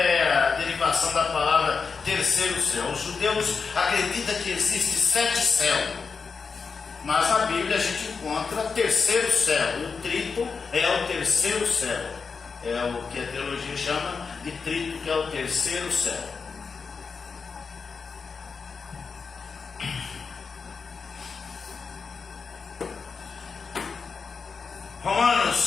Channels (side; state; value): right; quieter; 5.2 dB